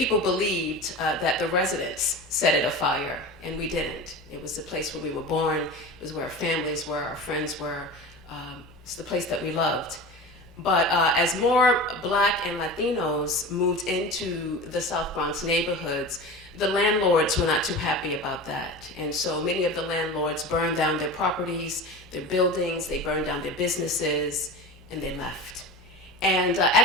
believed that the residents set it afire, and we didn't. It was the place where we were born, it was where our families were, our friends were. It's the place that we loved. But as more Black and Latinos moved into the South Bronx neighborhoods, the landlords were not too happy about that. And so many of the landlords burned down their properties, their buildings, they burned down their businesses, and they left. And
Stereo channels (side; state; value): both; normal; correlation 0.31